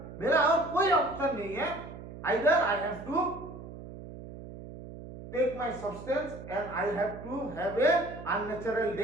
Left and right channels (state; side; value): noise; right; hum, 13 dB below the sound